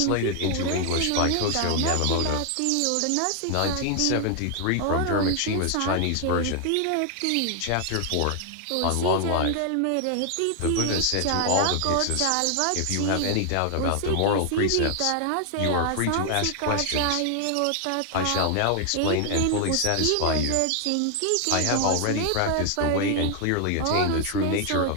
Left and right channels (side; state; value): both; different; correlation 0.00